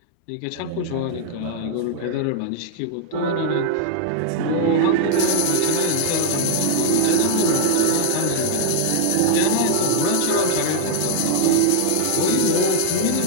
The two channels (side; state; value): both; different; correlation -0.01